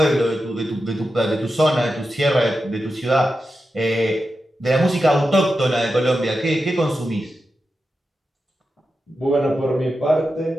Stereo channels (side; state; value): both; normal; correlation 0.90